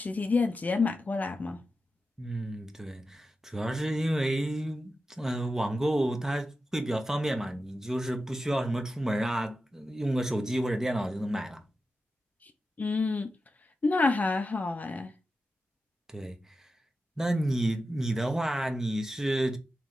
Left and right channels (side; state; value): both; normal; correlation 0.91